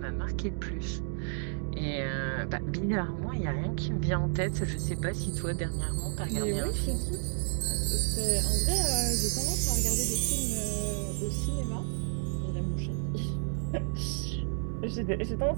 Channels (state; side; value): silent; left; 57 dB below the other